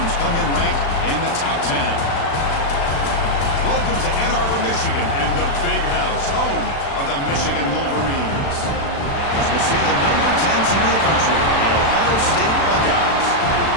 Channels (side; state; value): right; late; 36 ms